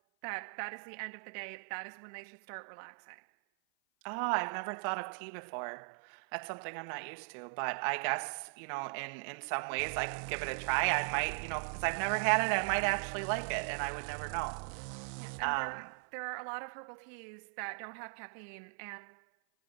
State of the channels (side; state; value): left; silent; 52 dB below the other